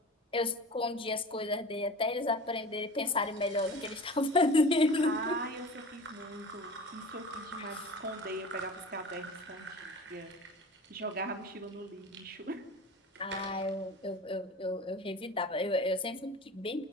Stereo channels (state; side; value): normal; both; correlation 0.36